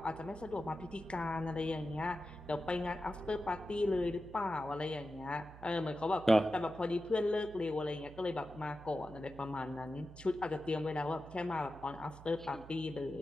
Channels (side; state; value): right; noise; hum, 16 dB below the sound